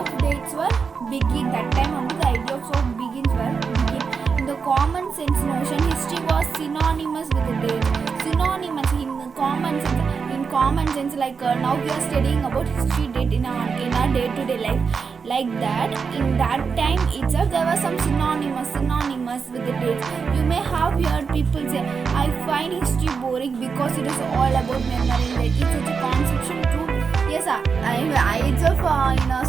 dates were begin. That time only the idea of begins were begin. In the common sense notion, history was synonymous with the date. Synonymous in common sense, like now we are studying about history date in our day-to-day life. Like that, in that time itself, there was some synonymous with the dates. You may have heard people say, "I find history boring because it is all about memory." Like it's such a conception too. Yes, I itself in a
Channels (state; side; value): quieter; left; 5.6 dB